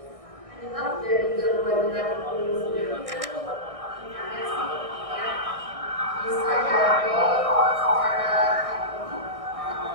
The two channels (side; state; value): left; late; 1.6 ms